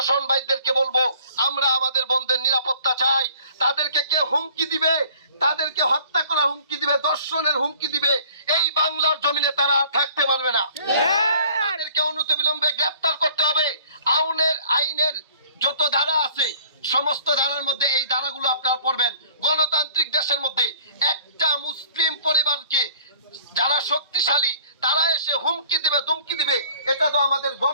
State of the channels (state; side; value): inverted; both; correlation -0.53